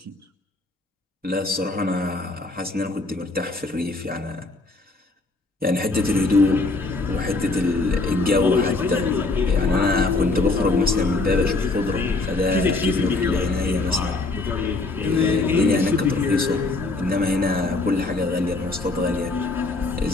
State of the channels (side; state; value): right; quieter; 3.3 dB